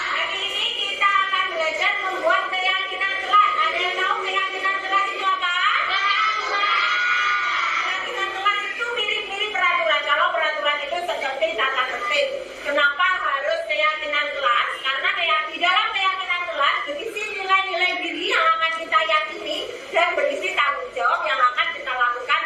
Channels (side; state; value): both; identical; correlation 1.00